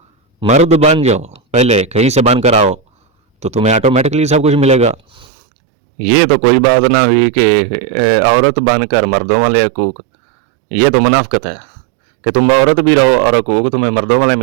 पहले कहीं से बन कर आओ तो तुम्हें ऑटोमेटिकली सब कुछ मिलेगा। ये तो कोई बात ना हुई कि औरत बनकर मर्दों वाले हकूक़, ये तो मुनाफ़िक़त है कि तुम औरत भी रहो और हकूक़ तुम्हें मर्दों वाले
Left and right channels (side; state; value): left; drops out; at 5.2 s